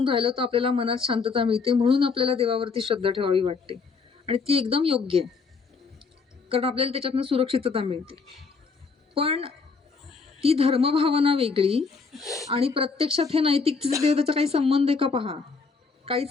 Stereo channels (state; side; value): quieter; right; 4.8 dB